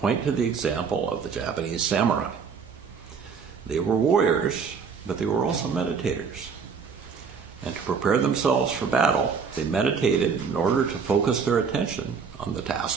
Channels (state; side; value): quieter; left; 5.9 dB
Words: to the example of the Japanese samurai. They were warriors, but they were also meditators. And to prepare themselves for battle, they meditated in order to focus their attention on the